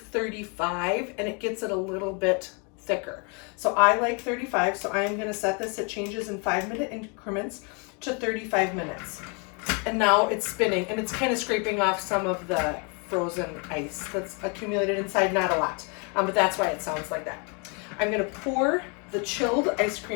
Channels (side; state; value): right; quieter; 34.6 dB